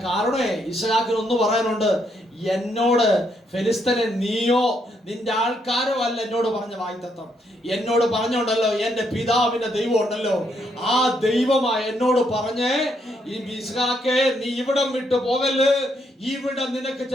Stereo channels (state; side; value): normal; both; correlation 0.75